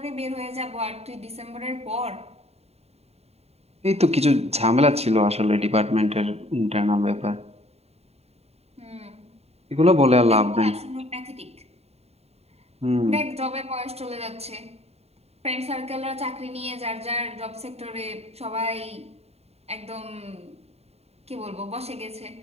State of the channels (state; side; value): late; left; 0.30 ms